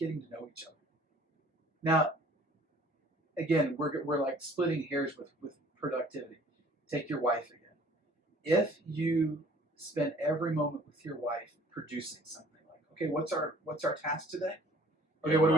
to know each other. Now, again, we're like splitting hairs with productivity. Take your wife again. If you spend every moment with your wife producing something, like, okay, what's our task today? Okay, Yeah, what are we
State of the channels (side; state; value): both; normal; correlation 0.54